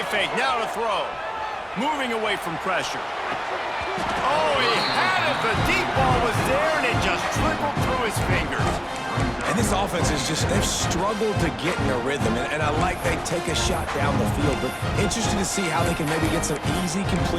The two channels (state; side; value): identical; both; correlation 1.00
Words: fake, now to throw. Moving away from pressure. Oh, he had it. The deep ball was there, and it just trickled through his fingers. And this offense is just, they've struggled to get in a rhythm. And I like they take a shot down the field, but interested to see how they can maybe get some easy